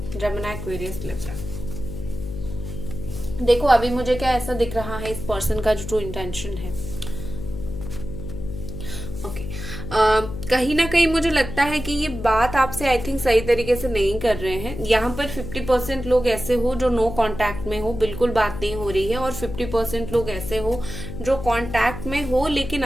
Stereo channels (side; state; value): left; noise; hum, 9 dB below the sound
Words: Gemini, Aquarius, Libra. देखो अभी मुझे क्या ऐसा दिख रहा है, इस पर्सन का जो ट्रू इंटेंशन है। ओके, कहीं ना कहीं मुझे लगता है कि ये बात आपसे आई थिंक सही तरीके से नहीं कर रहे हैं। यहाँ पर 50% लोग ऐसे हो जो नो कांटेक्ट में हो, बिल्कुल बात नहीं हो रही है, और 50% लोग ऐसे हो जो कांटेक्ट में हो लेकिन